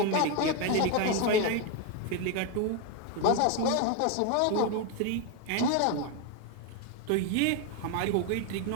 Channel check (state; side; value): different; both; correlation 0.02